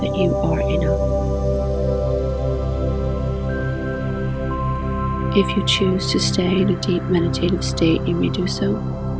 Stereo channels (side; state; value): both; identical; correlation 1.00